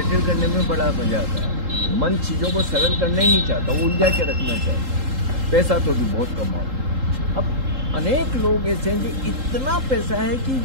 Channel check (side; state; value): left; late; 3.8 ms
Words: करने में बड़ा मजा आता है। मन चीजों को सरल करना ही नहीं चाहता, वो उलझा के रखना चाहता। पैसा तो भी बहुत कमाओ। अब अनेक लोग ऐसे हैं कि इतना पैसा है कि